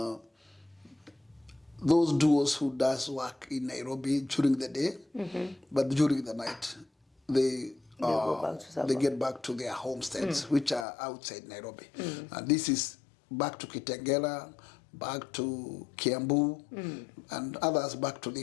those duos who does work in Nairobi during the day, but during the night they get back to their homesteads, which are outside Nairobi. And this is back to Kitengela, back to Kiambu, and others back to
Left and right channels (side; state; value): right; drops out; at 10.9 s